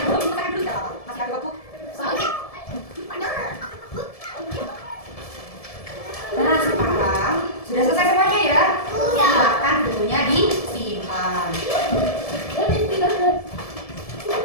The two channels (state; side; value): late; right; 1.7 ms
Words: kita dulu ya, masih ada waktu. Nah, sekarang sudah selesai semuanya ya. Silakan bukunya disimpan.